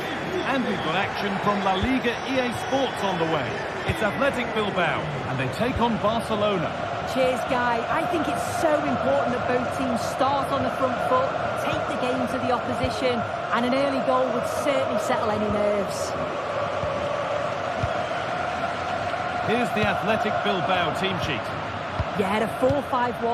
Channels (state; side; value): identical; both; correlation 1.00